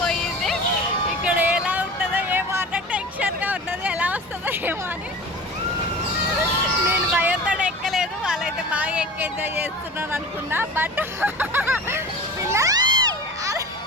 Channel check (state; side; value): normal; both; correlation 0.36